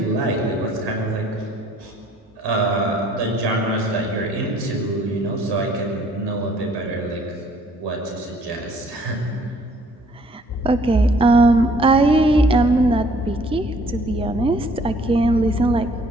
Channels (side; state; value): both; normal; correlation 0.60